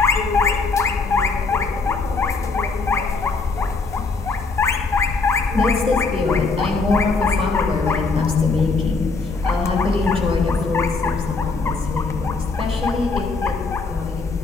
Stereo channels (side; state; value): right; quieter; 4.1 dB